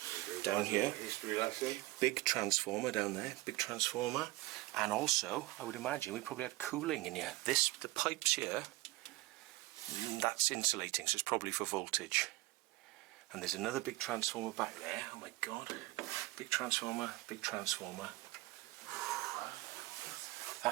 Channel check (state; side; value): quieter; left; 19.8 dB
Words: Down here, History lesson. big transformer down there, big transformer, and also I would imagine we probably had cooling in here. The pipes here, that's insulating, so it's probably for voltage. And there's another big transformer back there. Oh my God, big transformer, big transformer.